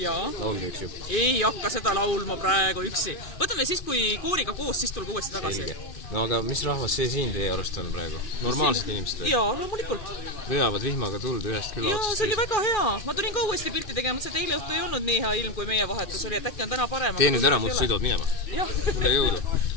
Jaa. Laulda üks ju. Ei hakka seda laulma praegu üksi. Võtame siis, kui kooriga koos, siis tulge uuesti tagasi. No aga mis rahvas see siin teie arust on praegu? Normaalsed inimesed või? Jaa, loomulikult. Veavad vihmaga tuld ühest küla Jaa, otsast see oli väga hea. Ma tulin ka uuesti pilti tegema, see eile õhtu ei olnud nii hea ilm, kui meie vahetus oli, et äkki on täna parem. Tee nüüd ära, muud sõidavad minema. Jah. Tule jõudu.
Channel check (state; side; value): late; right; 2.6 ms